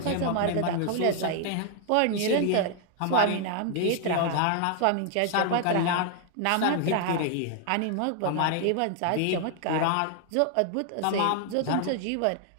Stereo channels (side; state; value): both; different; correlation 0.00